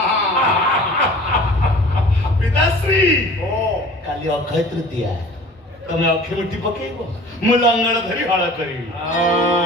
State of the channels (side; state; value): both; normal; correlation 0.44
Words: पिताश्री ओ काली अक्षय तृतीया तमे अक्षय मुठी पकेइबो मु लंगड़ धरी हळ करी